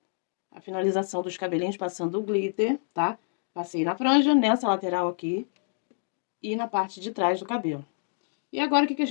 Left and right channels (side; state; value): right; silent; digital silence